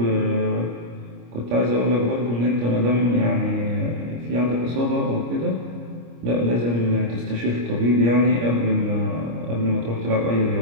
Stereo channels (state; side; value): late; left; 25 ms